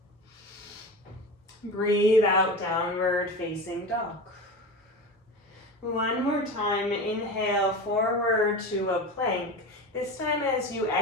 Breathe out, downward facing dog. One more time, inhale forward to a plank. This time as you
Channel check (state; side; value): normal; both; correlation 0.28